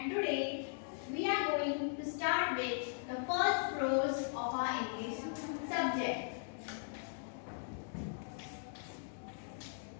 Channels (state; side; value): silent; right; digital silence